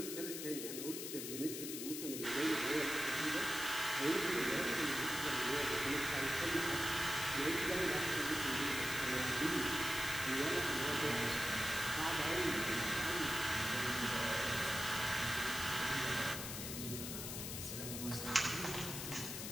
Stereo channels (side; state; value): left; noise; hiss, 5 dB below the sound